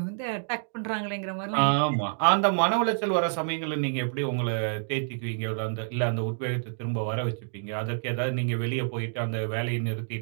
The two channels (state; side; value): silent; left; digital silence